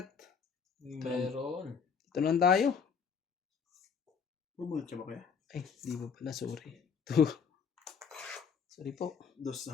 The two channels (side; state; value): right; quieter; 6.3 dB